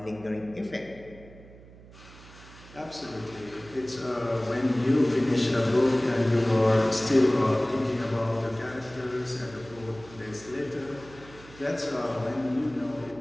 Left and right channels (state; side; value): noise; right; hum, 20 dB below the sound